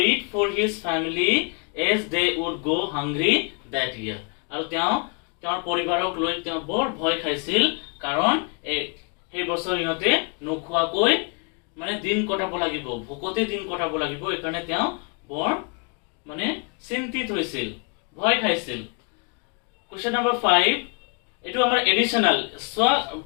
for his family as they would go hungry that year. আৰু তেওঁৰ পৰিবাৰক লৈ তেওঁ বৰ ভয় খাইছিল, কাৰণ এই বছৰ ইহঁতে নোখোৱাকৈ মানে দিন কটাব লাগিব, ভোকতে দিন কটাব লাগিব। এইকাৰণে তেওঁ বৰ মানে চিন্তিত হৈছিল, ভয় খাইছিল। কোৱেশ্চন নম্বৰ 5 এটো আমাৰ এডিশনাল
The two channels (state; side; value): quieter; right; 36.3 dB